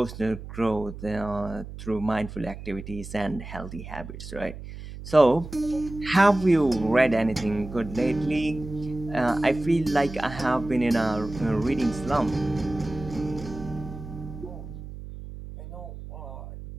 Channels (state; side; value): noise; right; hum, 12 dB below the sound